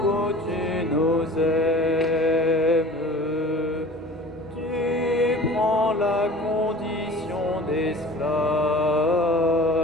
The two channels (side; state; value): both; normal; correlation 0.43